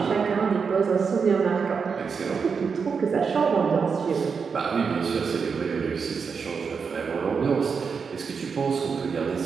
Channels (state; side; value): quieter; left; 5.7 dB